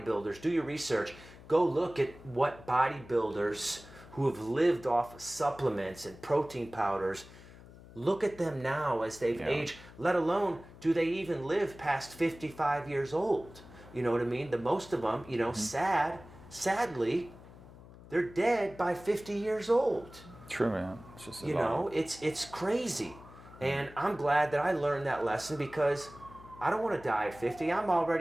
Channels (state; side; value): noise; left; hum, 19 dB below the sound